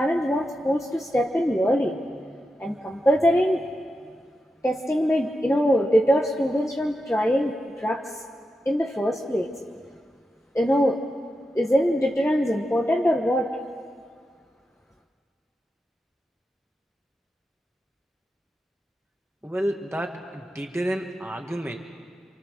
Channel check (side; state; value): both; normal; correlation 0.89